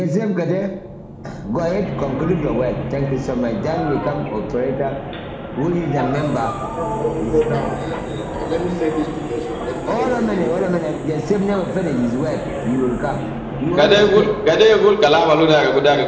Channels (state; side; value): identical; both; correlation 1.00